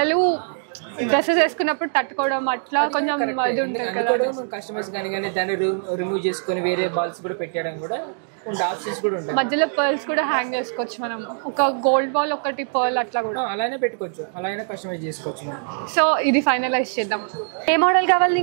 డ్రెస్సెస్ వేసుకున్నప్పుడు తట్టుకోవడం అట్లా కొంచెం అందుకో మనం కస్టమైజ్ కానీ దాన్ని రిమూవ్ చేసుకొని వేరే బాల్స్ కూడా పెట్టడం కూడా ఉంటాయి, ఆప్షన్స్ కూడా ఉంటాయి. మధ్యలో పర్ల్స్ కూడా హ్యాంగ్ చేసుకోవచ్చు మనం, ఒక గోల్డ్ బాల్ ఒకటి పర్ల్ అట్లా కూడా అలానే పెట్టుకోవచ్చు, అలా అయినా కస్టమైజ్ చేసుకోవచ్చు మనం. సో ఇది ఫైనలైజ్ చేద్దాం. ఏ మోడల్ కావాలి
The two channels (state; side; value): silent; left; digital silence